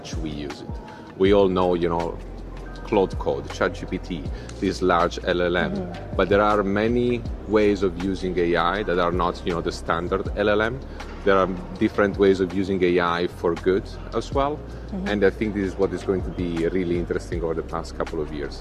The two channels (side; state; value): both; identical; correlation 1.00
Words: we use it. We all know, Cloud Code, ChatGPT, this large LLM. But there are many ways of using AI that are not, the standard LLM. There are different ways of using AI for good as well. And I think this is what is going to be really interesting over the past couple of